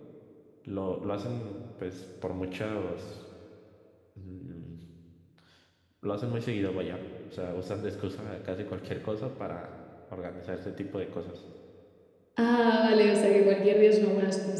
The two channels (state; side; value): identical; both; correlation 1.00